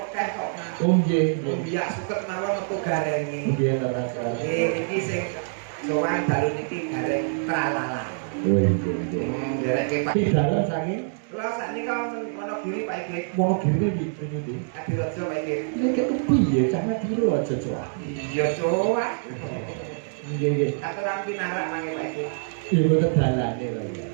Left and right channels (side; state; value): left; silent; digital silence